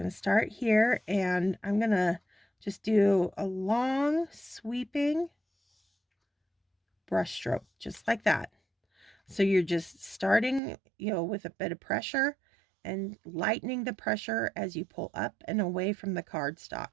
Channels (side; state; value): left; drops out; at 10.6 s